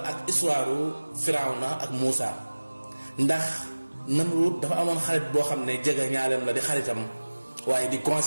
histoire Firawna ak Muusa ndax Namrud dafa amoon xarit boo xam ne jege ñaaleem la di xaritam waaye di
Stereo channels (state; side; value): inverted; both; correlation -1.00